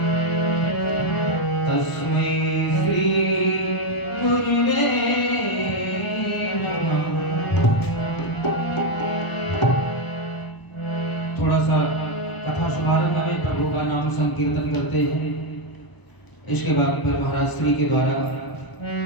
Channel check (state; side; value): late; right; 1.0 ms